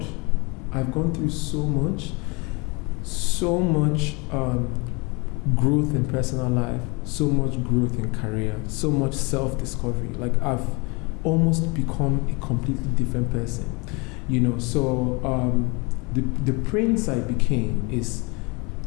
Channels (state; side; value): quieter; right; 28.7 dB